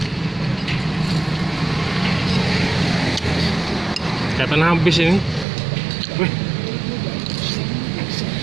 Kelihatan habis ini. Wih.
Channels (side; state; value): left; drops out; at 5.5 s